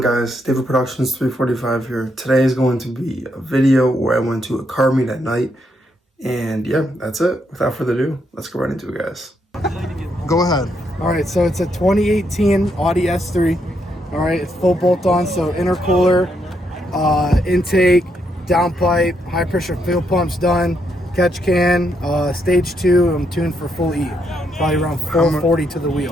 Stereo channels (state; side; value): normal; both; correlation 0.77